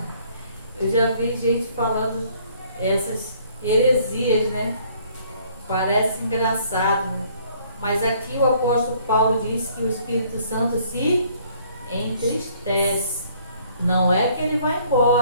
Eu já vi gente falando essas heresias, né? Parece engraçado, né? Mas aqui o apóstolo Paulo diz que o Espírito Santo se entristece. Não é que ele vai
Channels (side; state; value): both; inverted; correlation -0.61